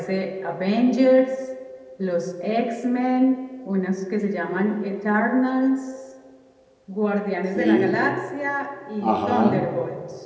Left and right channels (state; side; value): identical; both; correlation 1.00